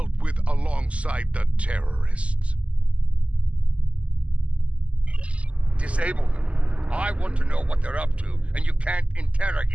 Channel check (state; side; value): late; left; 0.062 ms